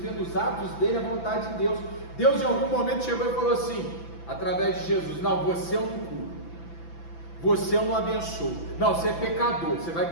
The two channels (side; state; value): right; late; 6.0 ms